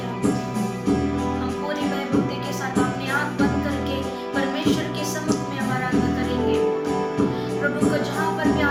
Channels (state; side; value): identical; both; correlation 1.00